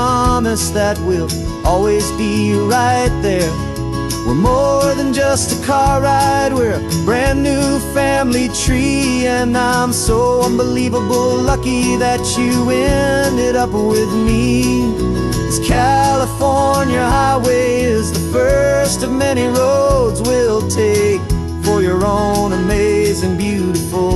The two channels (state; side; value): identical; both; correlation 1.00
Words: that we'll always be right there. We're more than just a car ride, we're a brand new family tree. And I'm so unbelievable lucky that you ended up with me. This California highway is the first of many roads we'll take for your own amazing,